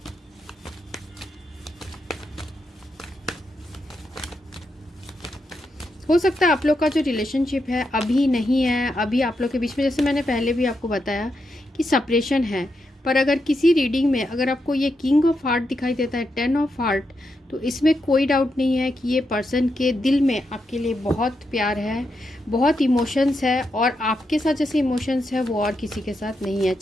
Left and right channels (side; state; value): both; normal; correlation 0.84